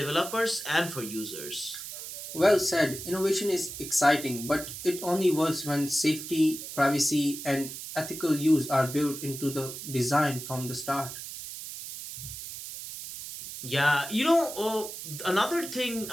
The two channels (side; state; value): right; noise; hiss, 9 dB below the sound